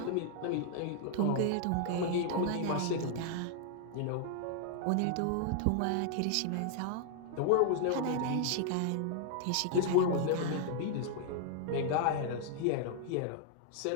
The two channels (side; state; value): both; different; correlation 0.00